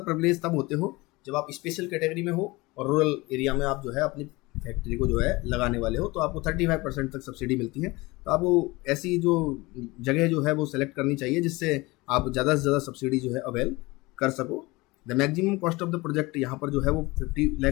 प्रिविलेज तब होते हो जब आप स्पेशल कैटेगरी में हो और रूरल एरिया में आप जो है अपनी फैक्ट्री को जो है लगाने वाले हो, तो आपको 35% तक सब्सिडी मिलती है। तो आपको ऐसी जो जगह जो है वो सेलेक्ट करनी चाहिए जिससे आप ज़्यादा से ज़्यादा सब्सिडी जो है अवेल कर सको। The maximum cost of the project यहाँ पर जो है वो 50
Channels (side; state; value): right; quieter; 22.6 dB